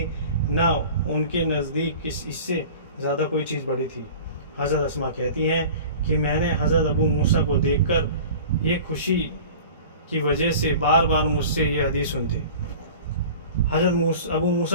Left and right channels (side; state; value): both; inverted; correlation -0.41